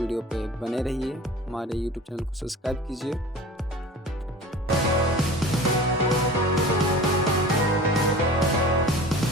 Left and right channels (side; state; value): both; normal; correlation 0.38